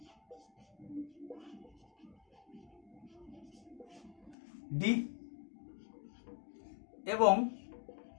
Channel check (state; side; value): drops out; right; at 4.4 s